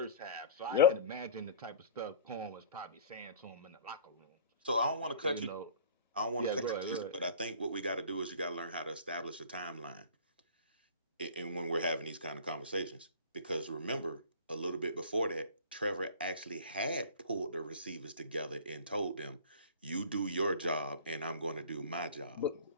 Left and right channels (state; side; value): inverted; both; correlation -0.41